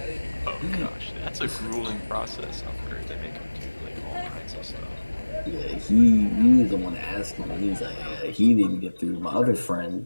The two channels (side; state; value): both; inverted; correlation -1.00